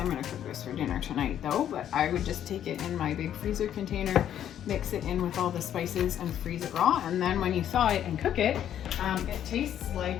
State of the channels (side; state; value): right; quieter; 10.3 dB